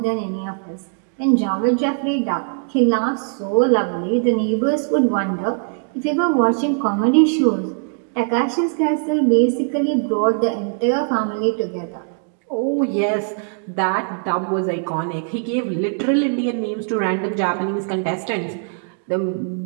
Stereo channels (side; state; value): left; silent; 61 dB below the other